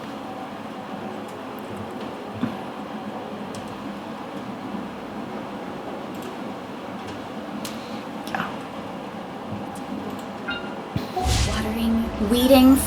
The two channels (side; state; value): both; identical; correlation 1.00